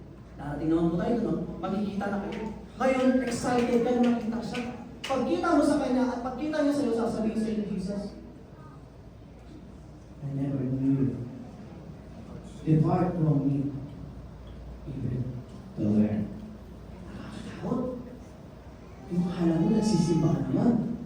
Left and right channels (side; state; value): both; identical; correlation 1.00